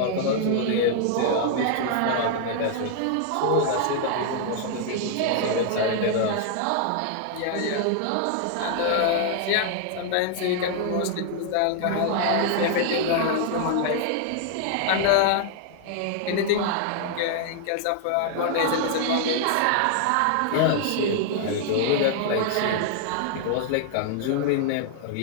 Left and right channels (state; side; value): different; both; correlation -0.01